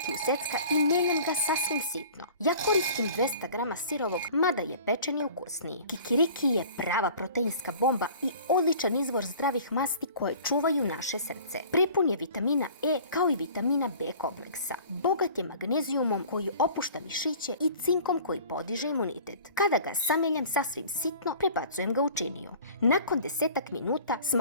u secka i mijenjam ga sasvim sitno. Ja koristim 200 grama sirovog, mada je pečeni ukusniji. Kikiriki je prava proteinska bomba i odličan izvor zdravih masti koje čuvaju naše srce. Prepun je vitamina E kao i vitamina B kompleksa. Bogat je magnezijumom koji opušta mišiće i cinkom koji podiže imunitet. Kada ga sameljam sasvim sitno, prebacujem ga u činiju. Nakon 10 minuta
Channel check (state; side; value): inverted; both; correlation -0.46